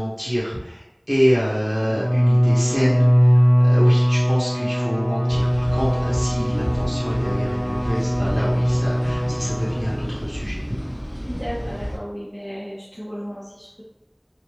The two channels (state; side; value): identical; both; correlation 1.00